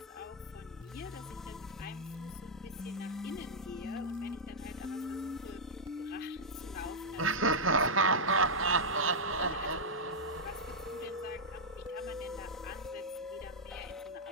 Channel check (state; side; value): normal; both; correlation -0.06